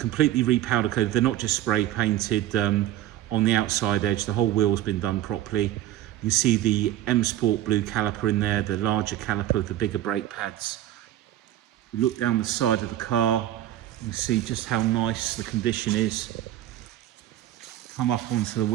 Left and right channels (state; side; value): quieter; left; 13.3 dB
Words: repowder coated. They're not just spray painted on the outside edge. The whole wheel's been done properly. You see the M Sport blue caliper in there, the larger caliper with the bigger brake pads. We look down the side of the car, you can see just how nice the condition is. Come up onto the